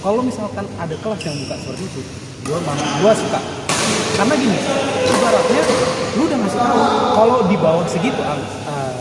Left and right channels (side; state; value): both; identical; correlation 1.00